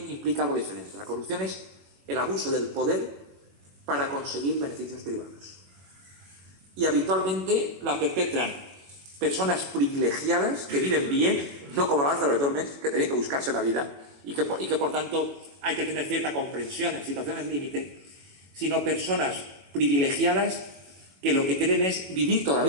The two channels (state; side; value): late; left; 21 ms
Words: implica algo diferente. La corrupción es el abuso del poder para conseguir beneficios privados. Y habitualmente la perpetran personas privilegiadas que viven bien, no como Lázaro de Tormes, que tenían que buscarse la vida y que por tanto hay que tener cierta comprensión en situaciones límite, sino personas privilegiadas que lo que quieren es vivir